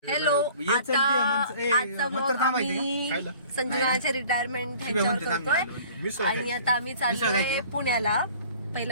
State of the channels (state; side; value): inverted; both; correlation -0.49